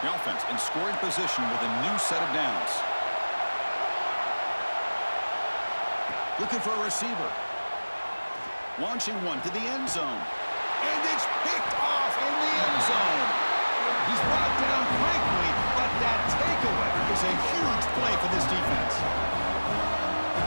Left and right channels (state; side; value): inverted; both; correlation -1.00